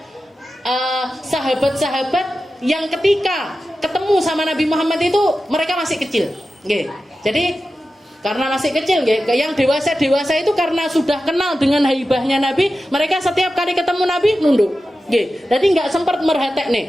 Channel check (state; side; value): normal; both; correlation 0.93